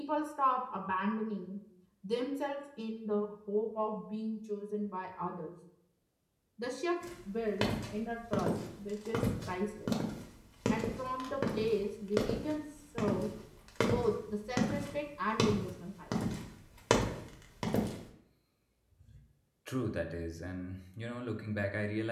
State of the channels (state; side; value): identical; both; correlation 1.00